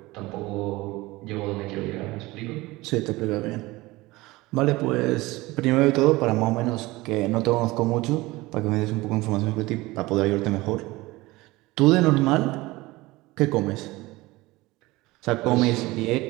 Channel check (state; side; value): quieter; left; 20.5 dB